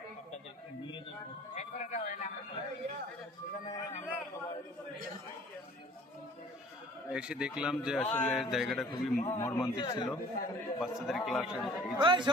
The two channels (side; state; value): both; normal; correlation 0.51